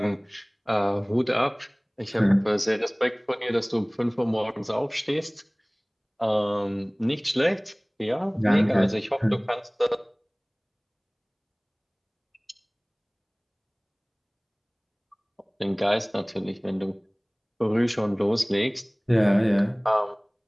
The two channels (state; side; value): identical; both; correlation 1.00